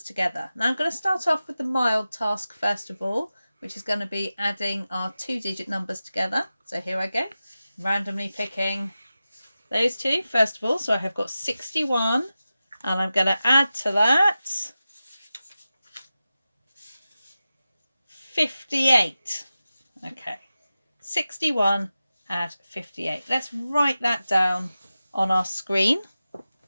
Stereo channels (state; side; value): inverted; both; correlation -0.94